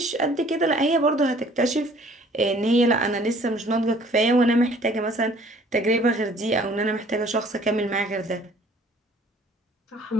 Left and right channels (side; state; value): both; normal; correlation 0.55